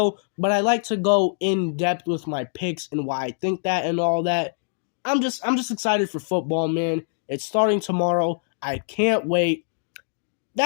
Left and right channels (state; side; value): silent; right; digital silence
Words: but I like to go in depth with my picks and why I think that and all that. I'm just excited for football, man. It's starting tomorrow. I can't wait.